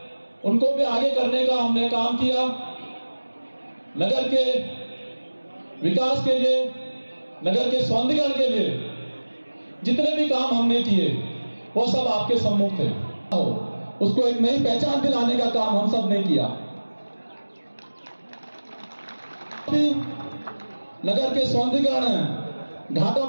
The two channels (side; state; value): both; inverted; correlation -1.00